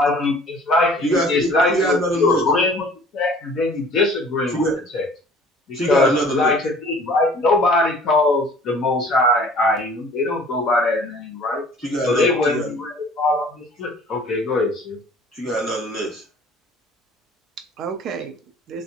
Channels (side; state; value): both; normal; correlation 0.50